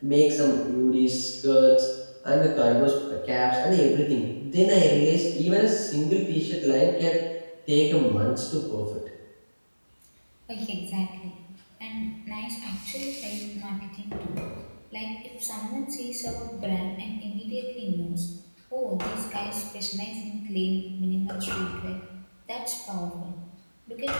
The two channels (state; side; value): inverted; both; correlation -1.00